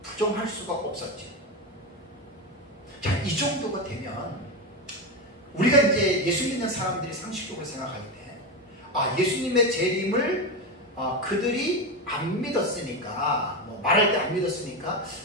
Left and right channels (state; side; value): normal; both; correlation 0.15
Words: 부정할 수가 없었죠. 자, 이 정도가 되면 우리가 이제 예수 믿는 사람들이 상식적으로 생각할 때, 예수님의 재림을 그들이 안 믿었으니까, 뭐 말할 때 안 믿었으니까,